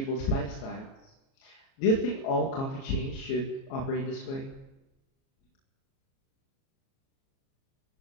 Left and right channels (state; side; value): late; right; 37 ms